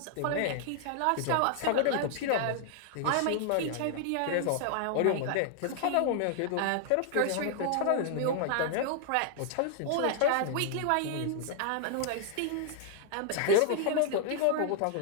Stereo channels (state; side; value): different; both; correlation 0.00